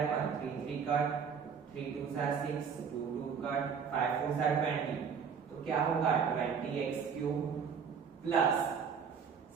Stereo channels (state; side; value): quieter; left; 6.6 dB